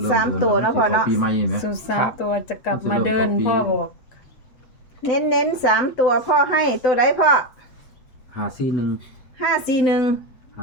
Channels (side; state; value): right; late; 7.9 ms